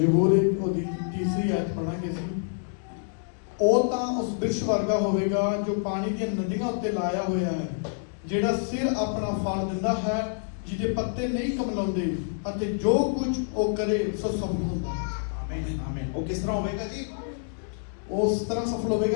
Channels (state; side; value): silent; right; digital silence